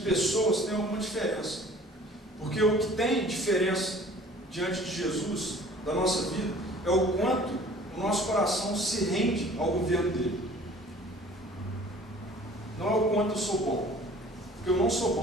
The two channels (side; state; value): both; normal; correlation 0.49